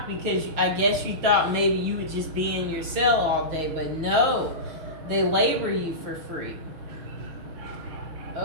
because I guess you thought maybe you would just be in your cell all day, but no, they labor you for free.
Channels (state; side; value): late; left; 6.4 ms